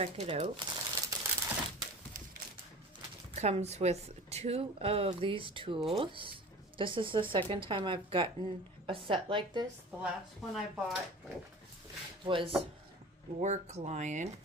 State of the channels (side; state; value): both; normal; correlation 0.39